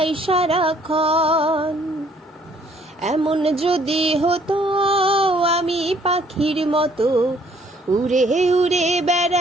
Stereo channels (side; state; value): both; normal; correlation 0.62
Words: সারাক্ষণ। এমন যদি হতো আমি পাখির মতো উড়ে উড়ে